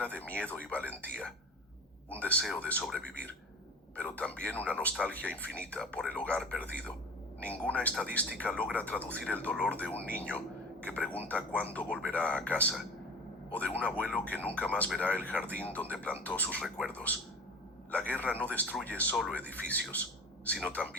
de miedo y valentía, un deseo de sobrevivir, pero también una nostalgia infinita por el hogar perdido. Ninguna estadística logra traducir el dolor de un niño que pregunta cuándo volverá a casa, o de un abuelo que nunca más verá el jardín donde plantó sus recuerdos. La guerra no destruye solo edificios, sino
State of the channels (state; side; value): normal; both; correlation 0.36